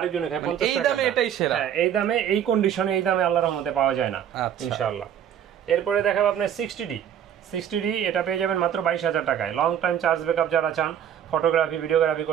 খায় 50 টাকা। এই দামে এটাই সেরা। হ্যাঁ, এই দামে, এই কন্ডিশনে, এই দামে আল্লাহর রহমতে পাওয়া যায় না ইনশাআল্লাহ। এরপরে দেখাবো আপনার 60D। এটা পেয়ে যাবেন মাত্র 22,000 টাকায়। লং টাইম চার্জ ব্যাকআপ যারা চান, ফটোগ্রাফি, ভিডিওগ্রাফি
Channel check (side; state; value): left; quieter; 9.5 dB